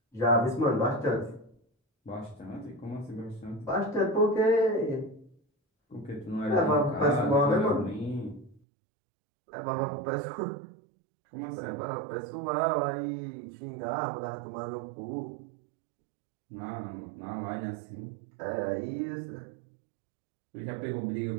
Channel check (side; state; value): left; drops out; at 8.6 s